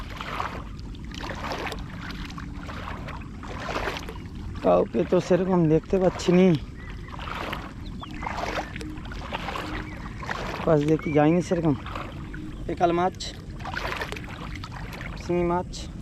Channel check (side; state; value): both; identical; correlation 1.00